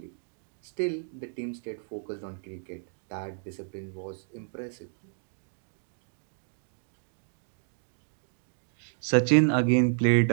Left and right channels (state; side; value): silent; left; 57 dB below the other